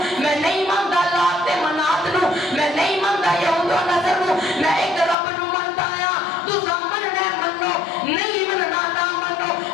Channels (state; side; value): drops out; right; at 5.2 s